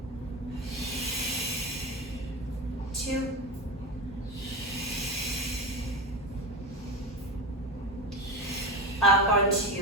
2. Up on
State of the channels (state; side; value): normal; both; correlation 0.21